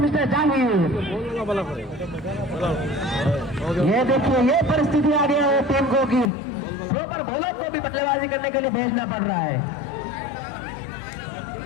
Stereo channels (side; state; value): right; drops out; at 6.3 s